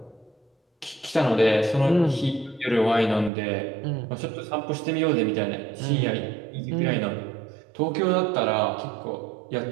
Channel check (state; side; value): drops out; left; at 3.3 s